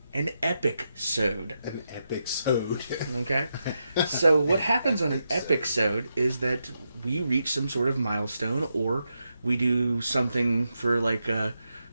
an Epic-sode. An Epic-sode. Okay? So what happens on an Epic-sode is that we reach some sort of milestone, or we do something for like a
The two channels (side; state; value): both; inverted; correlation -0.85